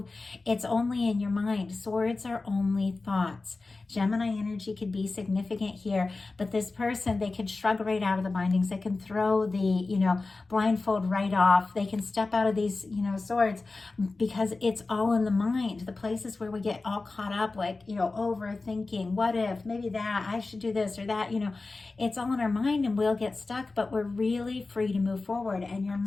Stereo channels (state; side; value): quieter; right; 3.6 dB